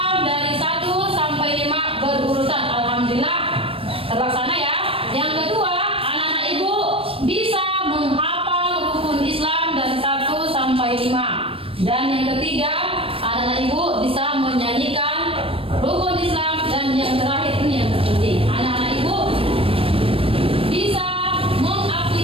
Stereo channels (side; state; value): left; late; 0.27 ms